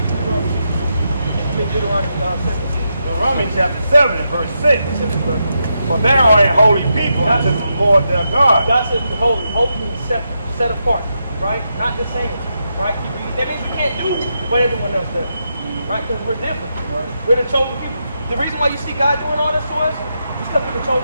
Deuteronomy 17. Romans chapter 7 and verse 6. For they are a holy people unto the Lord their God. God says we're holy. Holy means set apart, right? Not the same, right? That means we can't do what everyone else does, right? Because we're different. Right. We're the chosen people. The reason why you see God doing all this to us is because we're the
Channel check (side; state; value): both; inverted; correlation -0.84